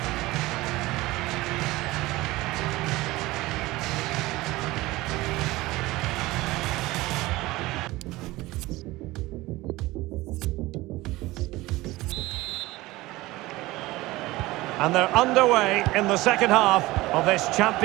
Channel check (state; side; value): quieter; left; 19.4 dB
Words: And they're underway in the second half of this